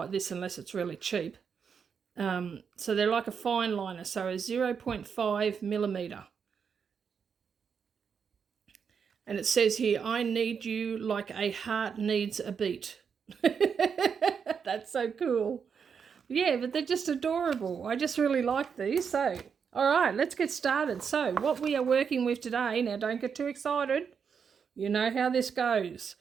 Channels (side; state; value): left; quieter; 6.6 dB